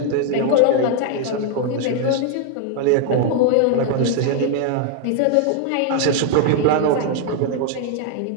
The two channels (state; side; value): different; both; correlation 0.00